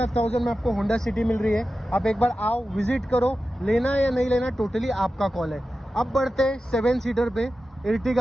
में आपको होंडा सिटी मिल रही है। आप एक बार आओ, विजिट करो, लेना है या नहीं लेना टोटली आपका कॉल है। अब बढ़ते 7 सीटर पे,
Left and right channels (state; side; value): normal; both; correlation 0.93